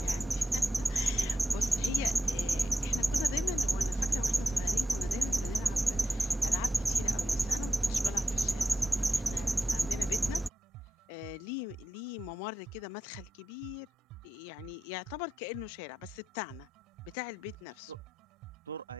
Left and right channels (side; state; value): both; normal; correlation 0.89